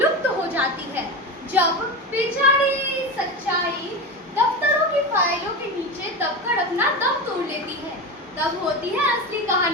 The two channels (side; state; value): both; normal; correlation 0.21